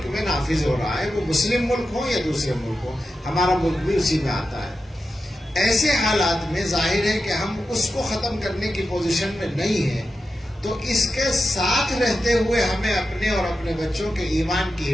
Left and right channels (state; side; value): normal; both; correlation 0.91